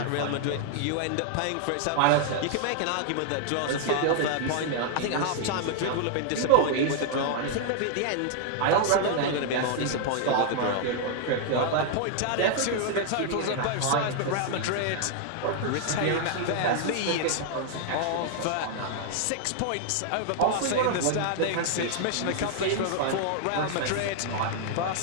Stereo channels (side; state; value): both; different; correlation 0.00